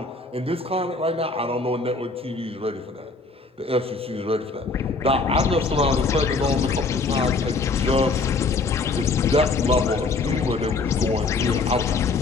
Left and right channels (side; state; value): right; quieter; 3.8 dB